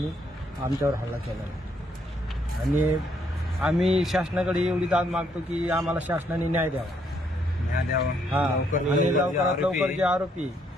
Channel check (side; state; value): both; normal; correlation 0.72